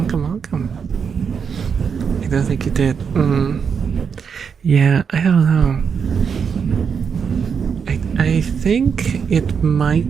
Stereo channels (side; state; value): left; quieter; 6.5 dB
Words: I don't think you did. Yeah, I don't know. I think it